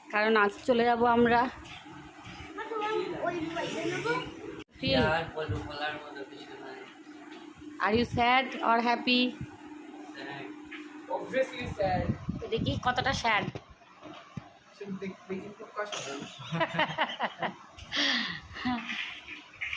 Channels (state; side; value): identical; both; correlation 1.00